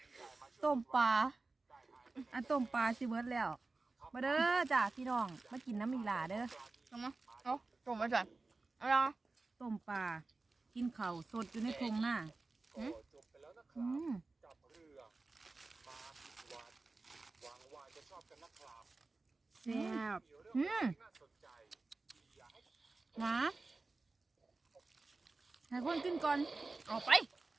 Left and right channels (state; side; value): quieter; left; 3.6 dB